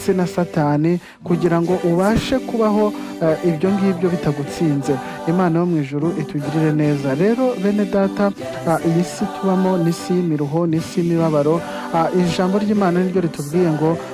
na Satani, kugira ngo ubashe kubaho ibyo ngibyo bitagutsinze. Imana yo mu ijuru itugirire neza. Rero bene data, iyi si tubamo ni isi y'imiruho, ni isi y'imibabaro. Ijambo ry'Imana niryo ritubwiye ngo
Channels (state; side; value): identical; both; correlation 1.00